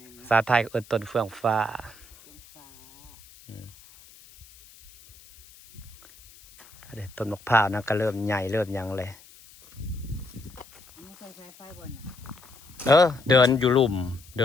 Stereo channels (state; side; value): noise; left; hiss, 23 dB below the sound